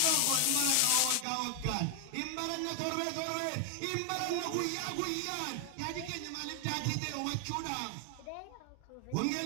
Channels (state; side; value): different; both; correlation 0.00